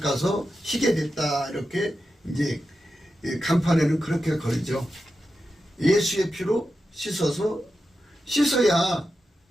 희게 됐다. 이렇게 이제 간판에는 그렇게 걸죠. 예수의 피로 씻어야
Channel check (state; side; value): normal; both; correlation 0.90